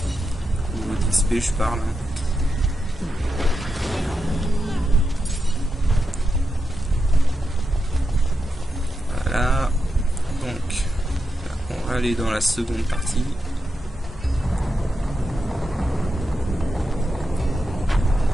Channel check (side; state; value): both; normal; correlation 0.87